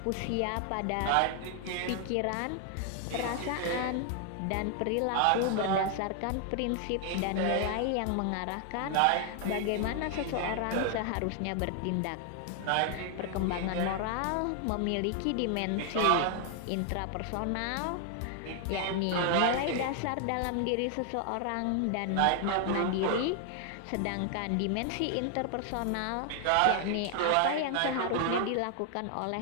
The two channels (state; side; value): different; both; correlation 0.00